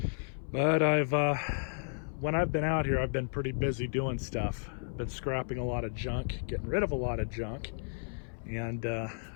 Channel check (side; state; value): right; silent; 56 dB below the other